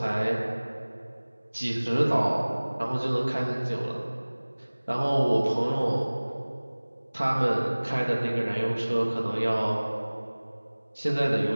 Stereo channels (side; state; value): both; inverted; correlation -1.00